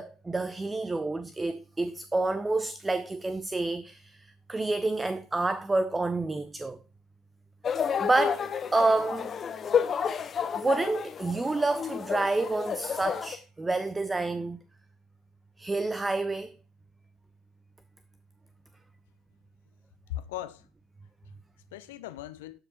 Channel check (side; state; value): both; normal; correlation 0.87